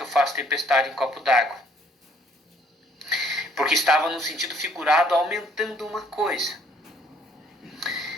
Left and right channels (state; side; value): normal; both; correlation 0.62